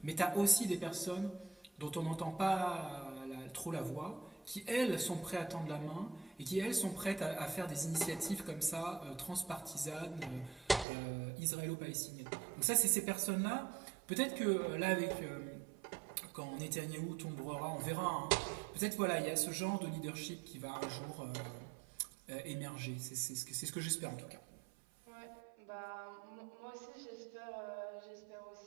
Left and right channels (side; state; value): left; drops out; at 10.9 s